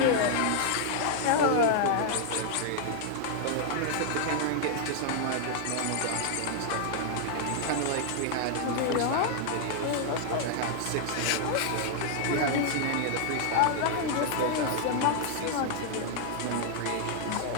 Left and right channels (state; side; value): different; both; correlation 0.00